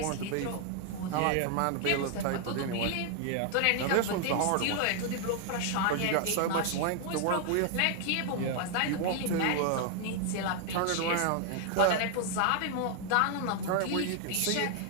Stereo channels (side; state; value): both; different; correlation 0.00